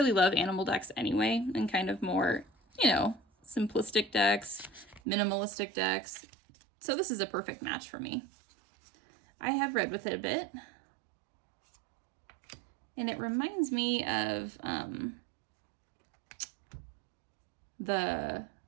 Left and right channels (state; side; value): drops out; left; at 5.0 s